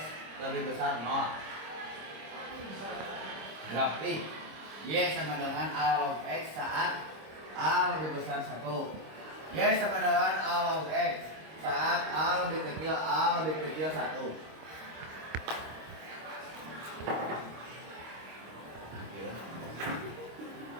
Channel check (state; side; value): late; left; 26 ms